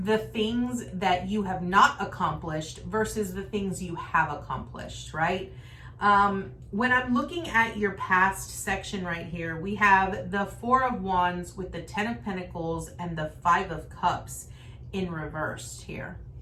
things that you have not accomplished versus the things you have accomplished, right? When I'm looking at your past section right here, we have the Four of Wands with the Ten of Pentacles and the Five of Cups in reversed here.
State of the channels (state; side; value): identical; both; correlation 1.00